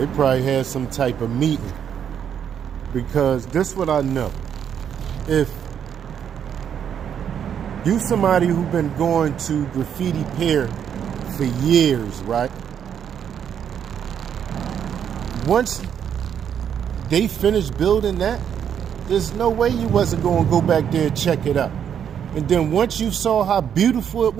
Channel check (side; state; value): left; quieter; 8.5 dB